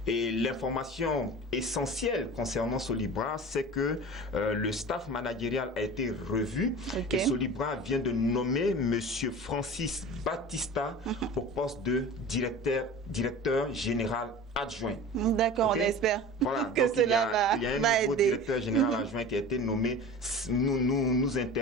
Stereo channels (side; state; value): both; normal; correlation 0.36